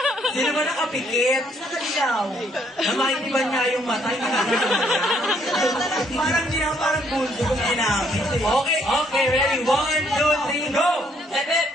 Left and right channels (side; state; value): both; normal; correlation 0.68